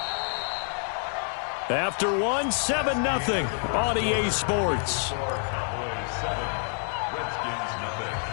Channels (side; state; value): right; silent; 57 dB below the other